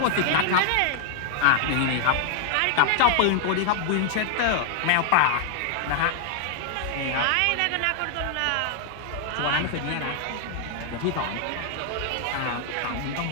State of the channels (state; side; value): different; both; correlation 0.00